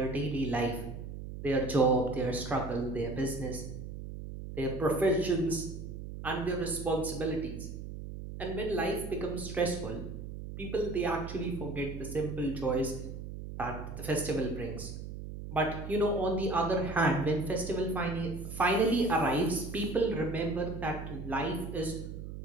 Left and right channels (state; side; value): noise; right; hum, 9 dB below the sound